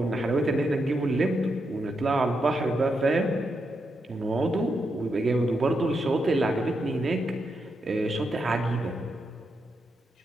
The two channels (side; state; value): both; normal; correlation 0.83